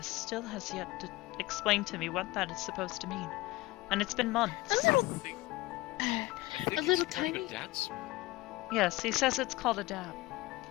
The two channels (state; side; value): quieter; right; 19.4 dB